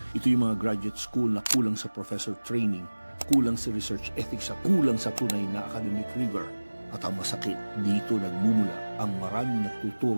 Ito yung mga graduate school na kulang sa professor training, kulang sa research ethics at kulang sa tunay na academic rigor. At ang masakit, dito nagmumula ang maraming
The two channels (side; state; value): both; inverted; correlation -1.00